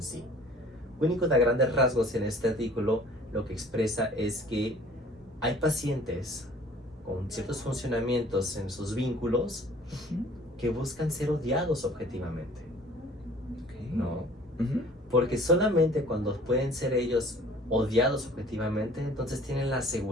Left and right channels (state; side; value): normal; both; correlation 0.51